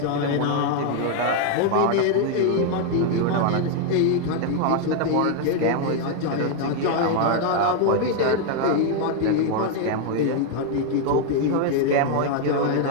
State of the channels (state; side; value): different; both; correlation 0.01